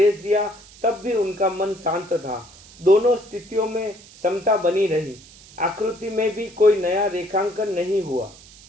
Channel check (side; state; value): right; noise; hiss, 22 dB below the sound